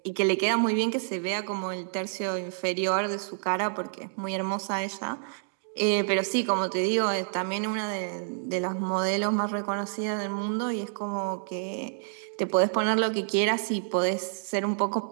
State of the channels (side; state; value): left; silent; digital silence